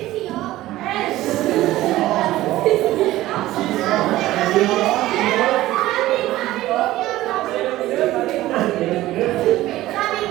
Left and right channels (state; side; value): quieter; left; 16.0 dB